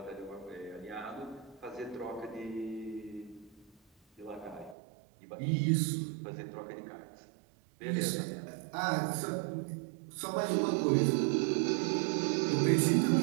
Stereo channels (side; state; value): left; drops out; at 4.8 s